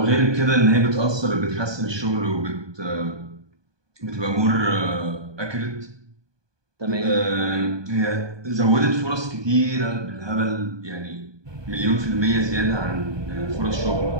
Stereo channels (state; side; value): late; left; 1.2 ms